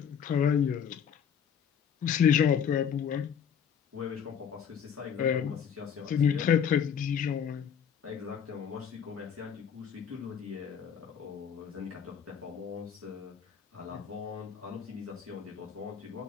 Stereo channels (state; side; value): quieter; right; 7.8 dB